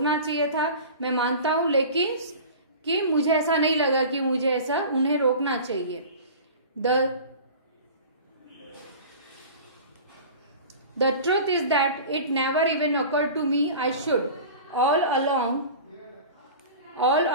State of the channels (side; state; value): both; inverted; correlation -0.37